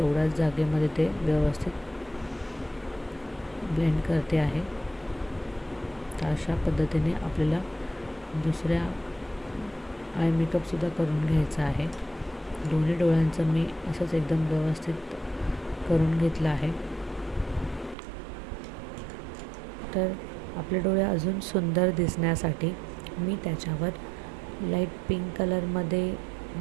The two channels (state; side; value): drops out; left; at 17.9 s